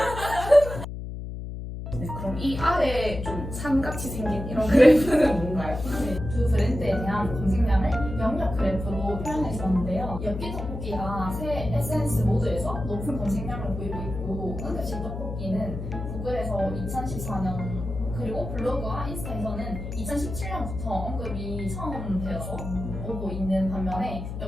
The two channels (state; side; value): noise; left; hum, 7 dB below the sound